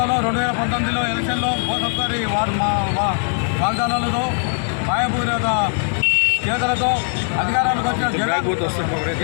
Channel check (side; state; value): right; silent; 62 dB below the other